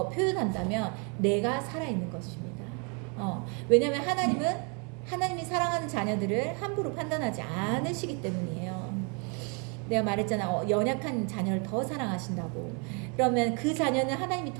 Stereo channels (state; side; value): quieter; left; 35.5 dB